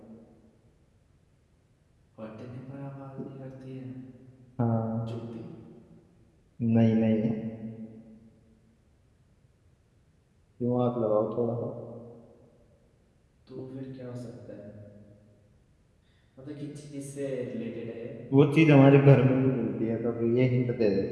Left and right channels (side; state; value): both; identical; correlation 1.00